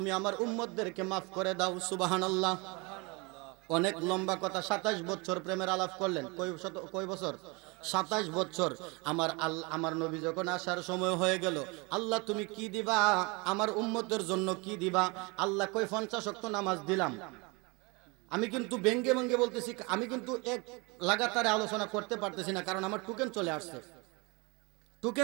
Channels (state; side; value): quieter; left; 27.9 dB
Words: আমার উম্মতদেরকে মাফ করে দাও। সুবহানাল্লাহ। অনেক লম্বা কথা, 27 বছর প্রেমের আলাপ করলেন। কয় বছর? 27 বছর। আমার নবী যখন আসার সময় হয়ে গেল, আল্লাহ তুমি কি দিবা আমার উম্মতের জন্য, কি দিবা? আল্লাহ কই 50 ওয়াক্ত নামাজ দিলাম। আমি কিন্তু ব্যঙ্গে ব্যঙ্গে বলতেছি, আমি কিন্তু এক লাগাতারে আলোচনা করতে পারতেছি না, কারণ আমার টোকেন চলে আসছে।